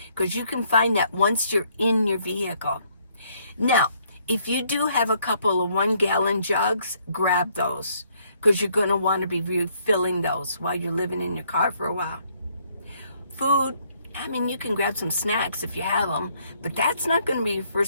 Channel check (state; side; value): inverted; both; correlation -0.68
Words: because you can find that once you're in your vehicle. Now, if you do have a couple of 1-gallon jugs, grab those because you're going to want to be refilling those while you're living in your car for a while. Food, I mean, you can grab some snacks if you have them, but that's not going to be your